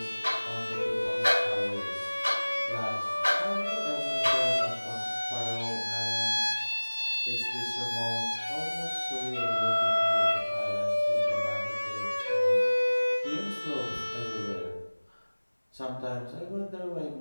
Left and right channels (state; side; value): inverted; both; correlation -1.00